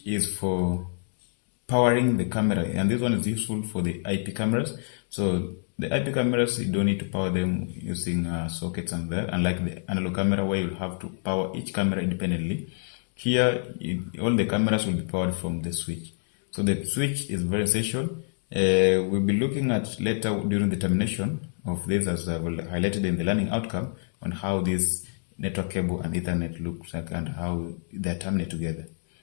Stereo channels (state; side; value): silent; right; digital silence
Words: is for powering the camera, and this one is useful for the IP cameras. So the IP cameras, you don't need to power them using sockets and that, unlike the analog camera where you'll have to power each camera independently. Here, all the cameras will be powered from the switch. So the switch is very essential. We'll be looking at later during the termination of this, as I've highlighted in the learning outcome, on how this network cable and Ethernet looks like and how they terminate together,